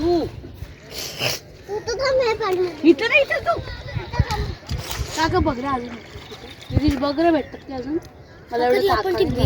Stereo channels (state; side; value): identical; both; correlation 1.00